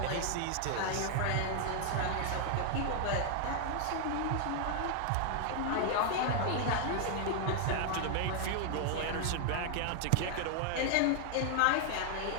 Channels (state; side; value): different; both; correlation 0.00